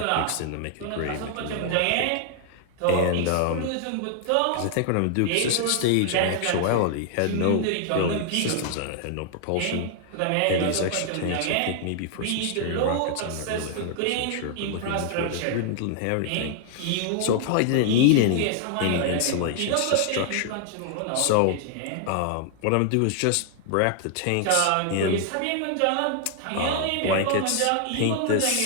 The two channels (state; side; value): different; both; correlation 0.00